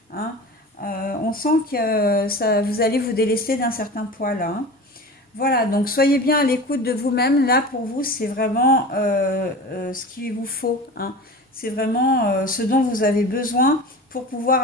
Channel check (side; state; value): both; normal; correlation 0.33